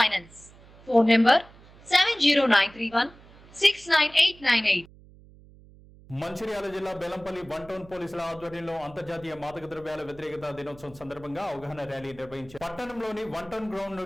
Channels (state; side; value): noise; right; hum, 23 dB below the sound